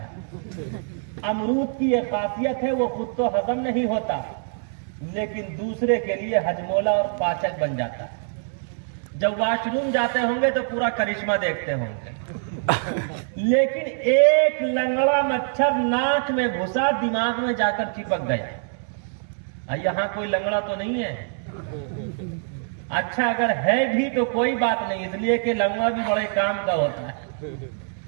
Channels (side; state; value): left; silent; 62 dB below the other